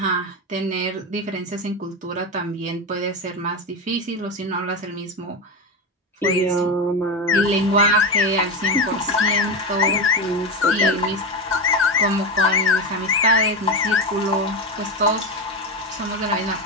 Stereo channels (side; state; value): both; normal; correlation 0.17